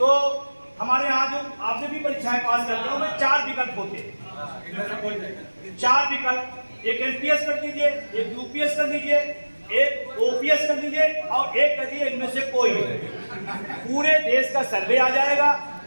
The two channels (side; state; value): both; inverted; correlation -1.00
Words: हमारे यहाँ जो आपने भी परीक्षाएं पास करते हो में 4 विकल्प होते हैं। 4 विकल्प, एक एनपीएस कर दीजिए, एक यूपीएस कर दीजिए, एक ओपीएस कर दीजिए और एक कर दीजिए इनमें से कोई। पूरे देश का सर्वे आ जाएगा,